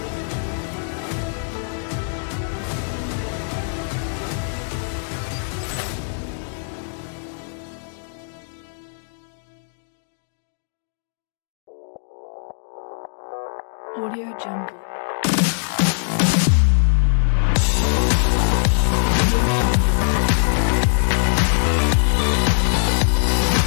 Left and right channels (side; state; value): right; silent; digital silence